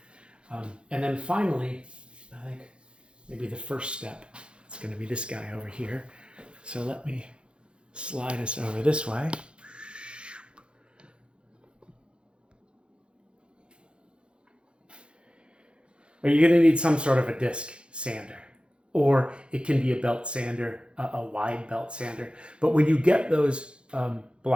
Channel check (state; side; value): late; left; 0.056 ms